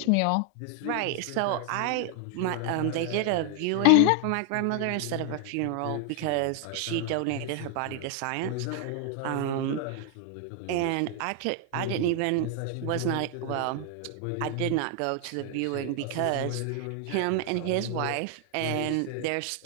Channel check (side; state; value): both; different; correlation 0.00